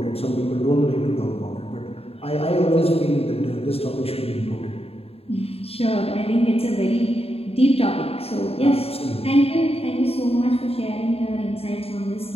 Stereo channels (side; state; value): right; late; 0.28 ms